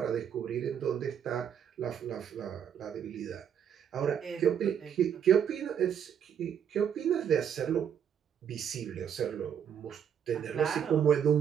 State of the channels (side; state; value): left; quieter; 8.5 dB